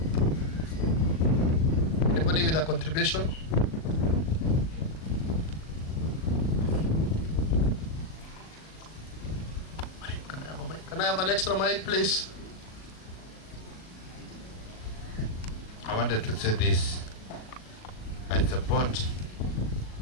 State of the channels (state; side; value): late; right; 38 ms